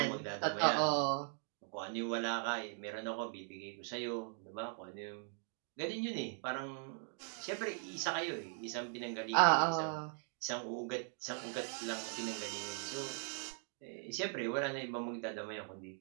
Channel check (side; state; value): left; silent; 51 dB below the other